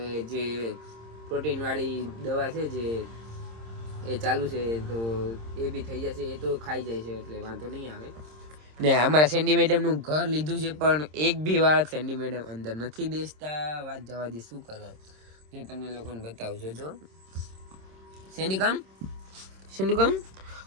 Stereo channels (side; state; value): left; late; 26 ms